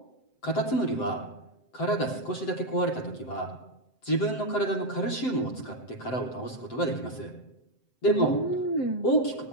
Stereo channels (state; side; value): late; right; 7.8 ms